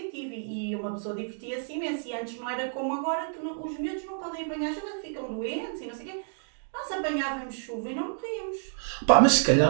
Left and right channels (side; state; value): left; silent; 59 dB below the other